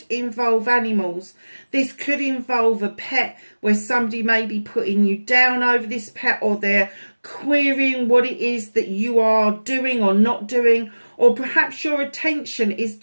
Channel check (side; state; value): both; inverted; correlation -1.00